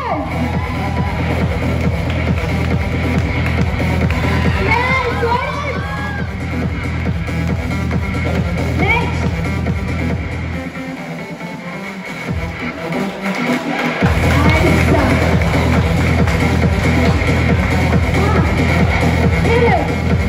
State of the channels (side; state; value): both; identical; correlation 1.00